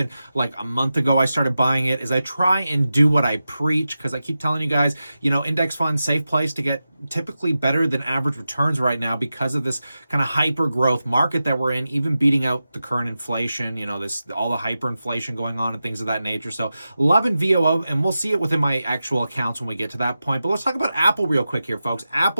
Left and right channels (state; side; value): inverted; both; correlation -0.92